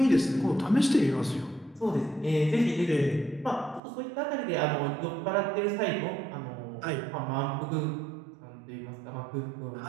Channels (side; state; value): left; drops out; at 3.8 s